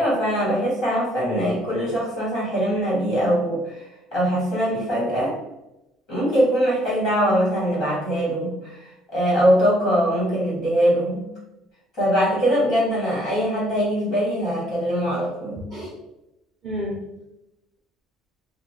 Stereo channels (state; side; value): normal; both; correlation 0.66